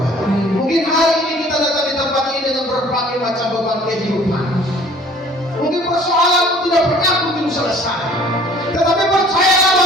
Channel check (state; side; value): normal; both; correlation 0.52